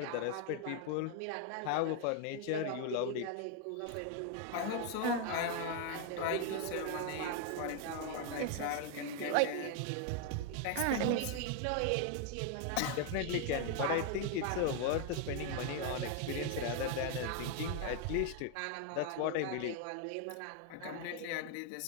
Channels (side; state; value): both; different; correlation 0.00